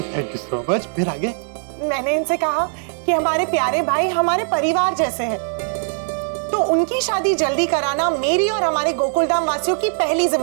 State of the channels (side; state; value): left; silent; 66 dB below the other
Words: Thank you so much. फिर आगे? मैंने इनसे कहा कि हमारे प्यारे भाई हमारे परिवार जैसे हैं, तो उनकी शादी जल्दी कराना मेरी और हमारे गोकुलधाम वासियों की पहली